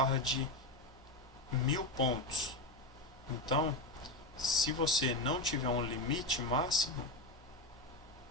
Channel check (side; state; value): both; normal; correlation 0.16